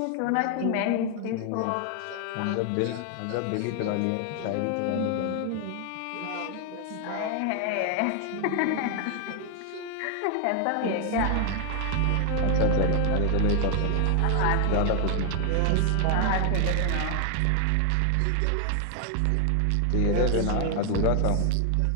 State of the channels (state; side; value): different; both; correlation 0.00